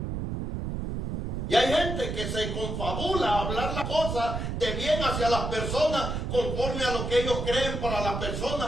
Y hay gente que se confabula a hablar las cosas de bien hacia las personas conforme a lo que ellos creen para las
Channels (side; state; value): right; noise; rumble, 3 dB below the sound